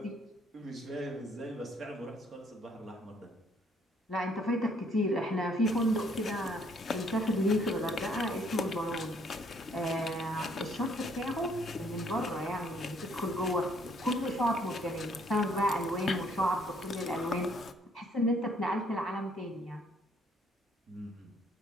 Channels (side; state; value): both; normal; correlation 0.65